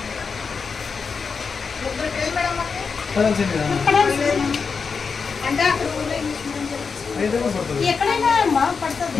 అంటే అక్కడ ఎక్కడైనా అమ్మా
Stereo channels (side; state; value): right; quieter; 5.3 dB